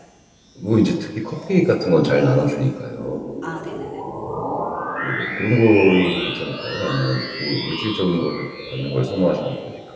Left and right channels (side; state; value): both; identical; correlation 1.00